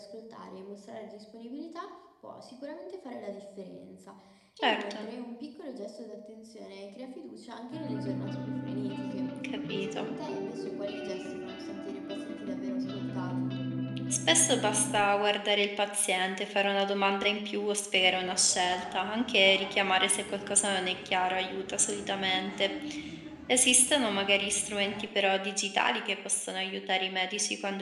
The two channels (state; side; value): identical; both; correlation 1.00